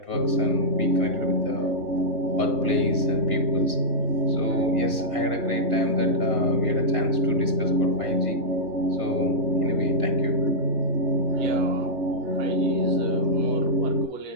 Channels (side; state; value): left; late; 2.8 ms